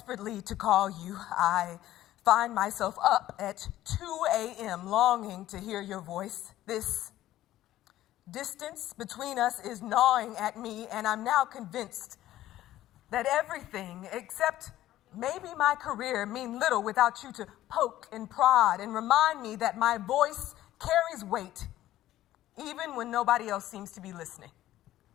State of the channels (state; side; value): quieter; right; 14.1 dB